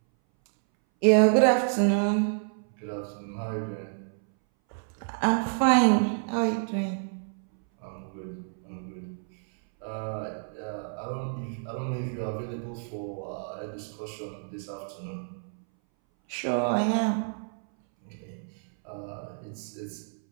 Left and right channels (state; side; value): silent; left; 59 dB below the other